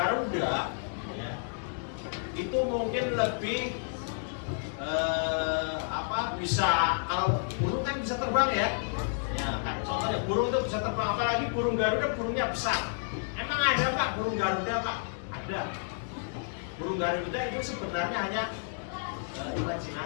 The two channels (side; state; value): right; silent; digital silence